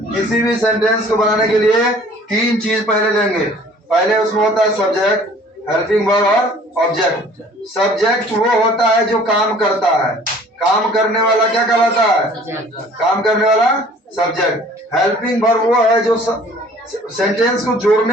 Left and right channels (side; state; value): both; normal; correlation 0.52